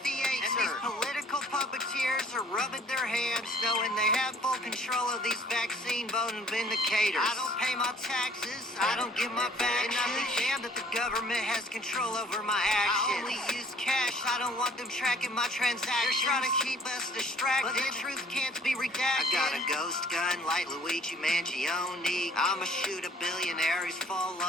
theater. And these political puppeteers are rubbing their hands knowing they have full control of these vaccine voting vindicators. I don't pay my taxes, I don't give my back. And I'm damned that the government has control over my actions. I only use cash, I don't want them tracking my transactions. They're trying to keep us distracted, but the truth can't be redacted. I got a ghost gun like Luigi Mangione. I'ma shoot a billionaire who's full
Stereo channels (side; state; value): both; normal; correlation 0.56